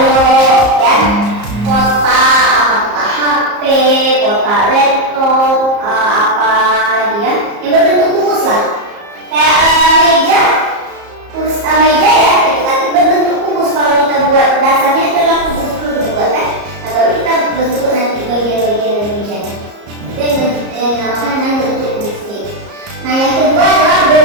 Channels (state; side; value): late; left; 34 ms